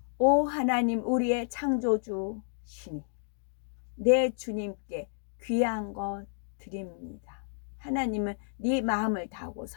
오 하나님 우리의 창조주시니 내 주님께 귀한 것 드립니다. 하나님은 네 마음을 다하고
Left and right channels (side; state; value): right; silent; digital silence